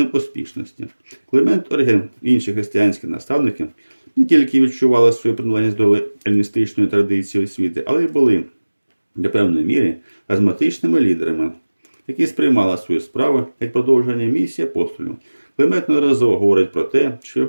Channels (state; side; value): inverted; both; correlation -1.00